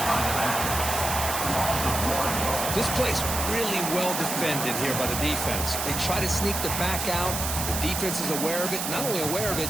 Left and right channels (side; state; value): right; noise; hiss, 3 dB below the sound